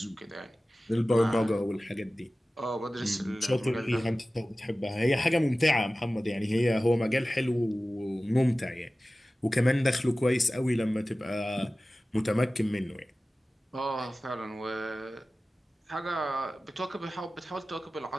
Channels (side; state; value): both; normal; correlation 0.96